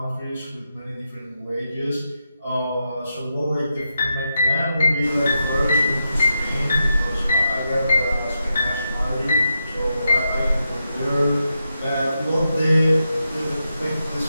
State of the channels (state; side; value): inverted; both; correlation -0.86